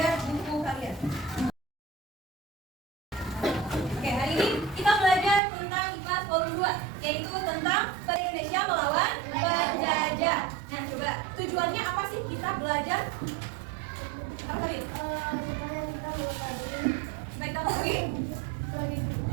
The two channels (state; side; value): drops out; left; at 5.4 s